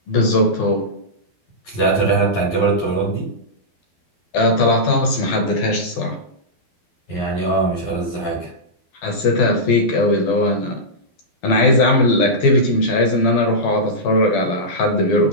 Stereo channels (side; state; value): right; late; 12 ms